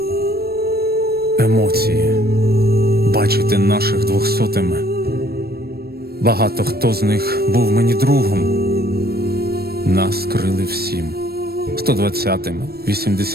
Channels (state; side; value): late; left; 0.45 ms